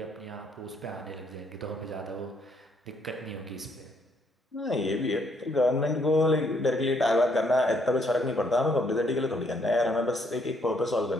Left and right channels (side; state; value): both; normal; correlation 0.70